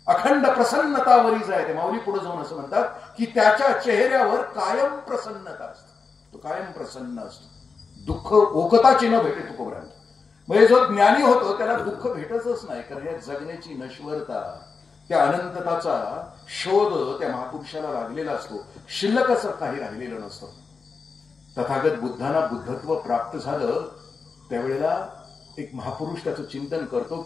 अखंड प्रसन्नता वरीच आहे. ते माऊली पुढे जाऊन असं म्हणतात की त्याच्या चेहऱ्यावर कायम प्रसन्नता असते, तो कायम प्रसन्न असतो. दुःख ओकताची न भेटे तुकोबरायांना. म्हणजे जो ज्ञानी होतो त्याला दुःख भेटतच नाही, कारण या जगण्याची नश्वरता, त्या अनंतताचा शोध त्या महापुरुषाला लागलेला असतो. शिल्लक असं काही राहिलेलं नसतं. तथागत बुद्धांना बुद्धत्व प्राप्त झालं त्यावेळेला एक महापुरुष त्याचं चिंतन करतो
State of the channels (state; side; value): quieter; right; 4.9 dB